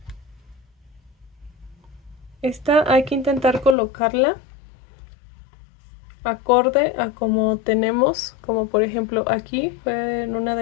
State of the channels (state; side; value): drops out; right; at 3.8 s